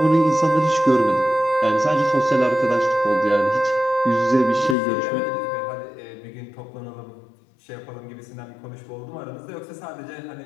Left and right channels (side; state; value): right; drops out; at 4.8 s